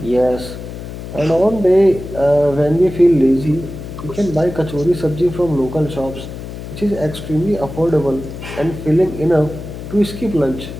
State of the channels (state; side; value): noise; left; hum, 10 dB below the sound